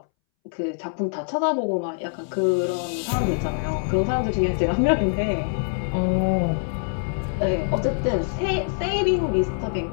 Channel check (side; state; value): right; silent; 62 dB below the other